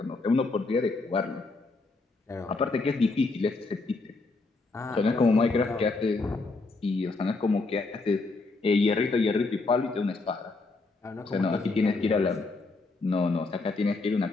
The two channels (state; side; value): quieter; right; 3.6 dB